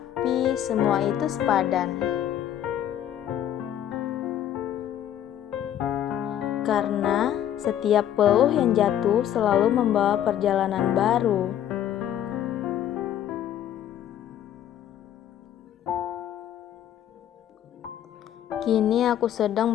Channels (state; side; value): quieter; right; 10.8 dB